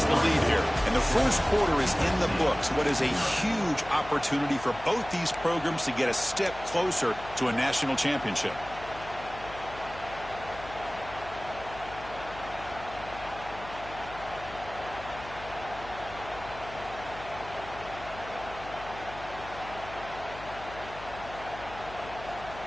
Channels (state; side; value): noise; left; hum, 15 dB below the sound